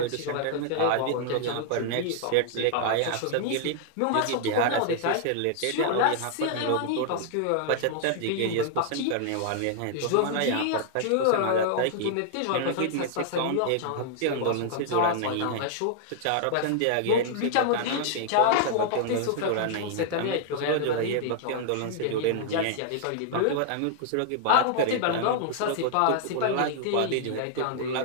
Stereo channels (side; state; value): both; different; correlation -0.01